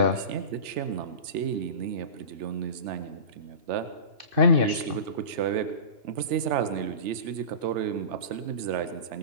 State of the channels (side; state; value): left; late; 3.4 ms